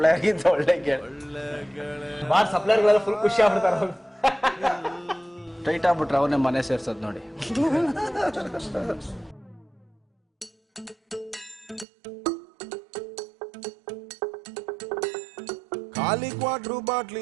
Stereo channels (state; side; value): drops out; left; at 11.9 s